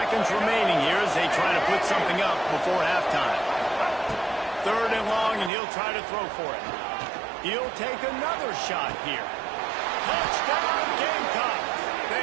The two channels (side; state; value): left; drops out; at 5.5 s